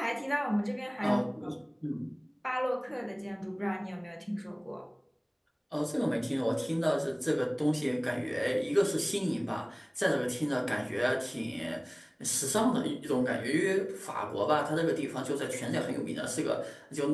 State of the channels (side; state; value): both; identical; correlation 1.00